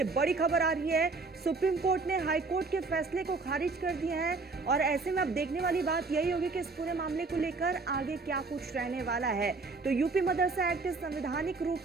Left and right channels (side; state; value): left; quieter; 3.9 dB